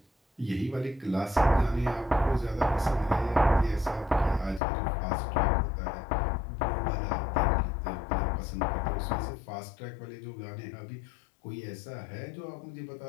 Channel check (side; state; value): right; drops out; at 4.6 s